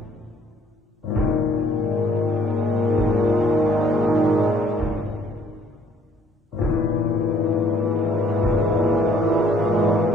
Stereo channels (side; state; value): both; normal; correlation 0.62